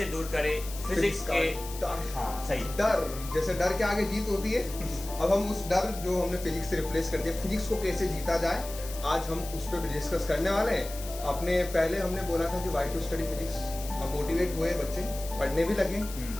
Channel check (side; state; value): left; noise; hiss, 13 dB below the sound